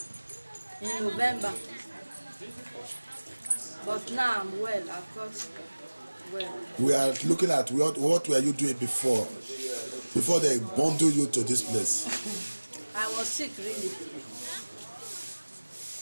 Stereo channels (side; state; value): both; inverted; correlation -1.00